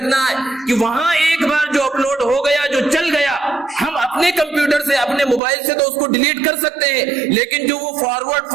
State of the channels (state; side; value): drops out; left; at 5.4 s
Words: ہے کہ وہاں ایک بار جو اپلوڈ ہو گیا، جو چل گیا، ہم اپنے کمپیوٹر سے، اپنے موبائل سے تو اس کو ڈیلیٹ کر سکتے ہیں، لیکن جو وہ